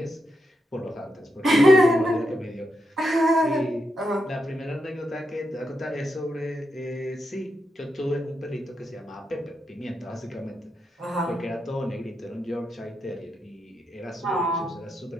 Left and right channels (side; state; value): both; normal; correlation 0.84